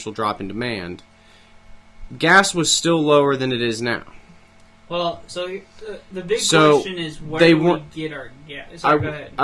drop in demand, gas was still lower than it is now. Well, so the big question is where do we get our gas? Sorry, go ahead.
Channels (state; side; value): identical; both; correlation 1.00